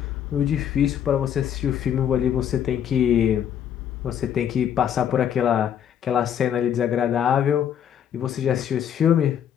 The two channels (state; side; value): quieter; right; 9.3 dB